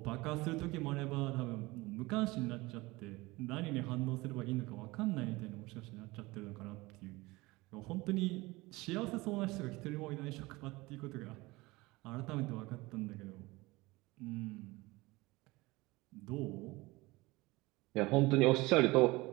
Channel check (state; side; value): quieter; left; 21.6 dB